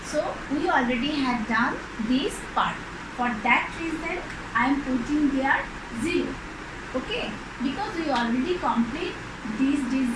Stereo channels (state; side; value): identical; both; correlation 1.00